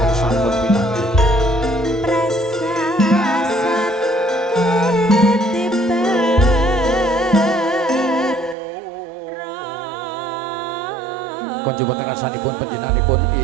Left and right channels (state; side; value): drops out; left; at 8.6 s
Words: Konjo wonten ngarsanipun panjenenganipun